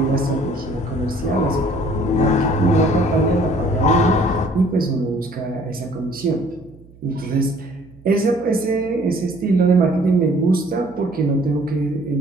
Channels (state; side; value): noise; right; hum, 24 dB below the sound